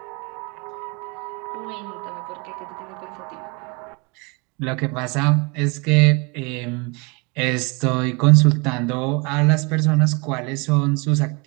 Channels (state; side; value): quieter; left; 29.6 dB